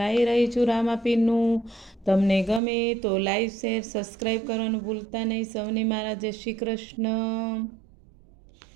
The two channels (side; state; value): left; drops out; at 2.6 s